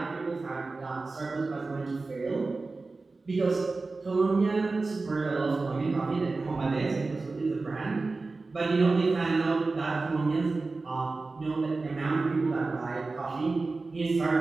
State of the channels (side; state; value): left; quieter; 3.7 dB